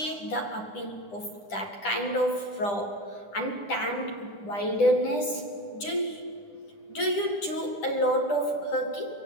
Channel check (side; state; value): right; late; 10 ms